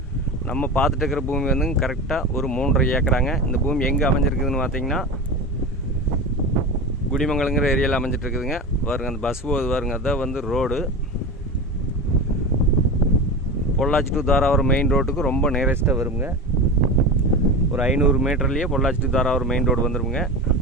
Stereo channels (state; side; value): normal; both; correlation 0.26